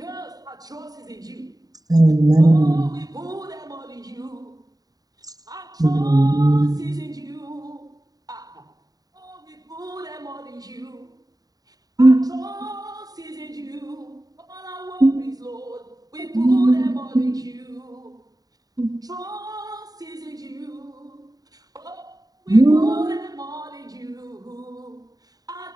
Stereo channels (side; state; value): left; late; 0.18 ms